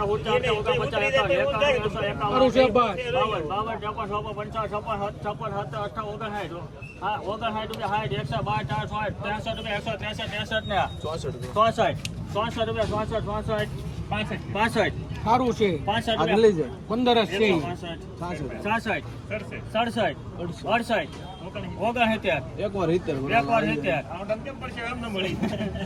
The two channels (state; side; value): identical; both; correlation 1.00